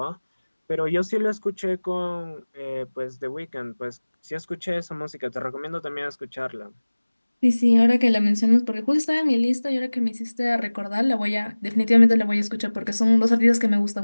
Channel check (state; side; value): inverted; both; correlation -1.00